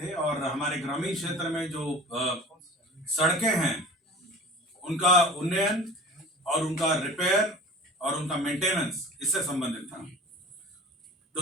और हमारे ग्रामीण क्षेत्र में जो सड़कें हैं उनका उन्नयन और उनका रिपेयर और उनका मेंटेनेंस इससे संबंधित था।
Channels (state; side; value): normal; both; correlation 0.41